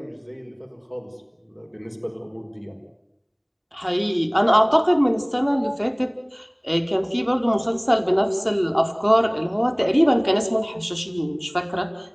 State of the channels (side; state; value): both; identical; correlation 1.00